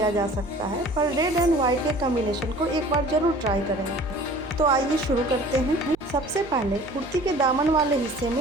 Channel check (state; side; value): noise; right; hum, 22 dB below the sound